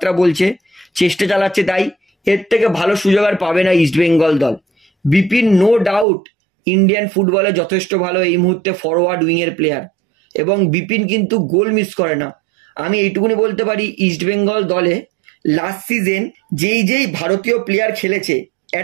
বলছে, চেষ্টা চালাচ্ছে, তাই এর থেকে ভালো সুযোগ আর পাবে না ইস্ট বেঙ্গল দল। বিপিন নো ডাউট ইন্ডিয়ান ফুটবলে যথেষ্ট ভালো এই মুহূর্তে ফরওয়ার্ড উইংয়ের প্লেয়ার এবং বিপিন কিন্তু গোল মিস করে না। আমি এইটুকুনি বলতে পারি ইস্ট বেঙ্গল দলে লাস্ট সিজন যেই ভারতীয় প্লেয়ার খেলেছে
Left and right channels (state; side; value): drops out; left; at 6.1 s